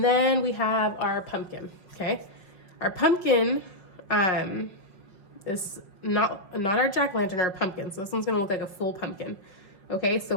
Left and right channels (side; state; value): right; late; 5.4 ms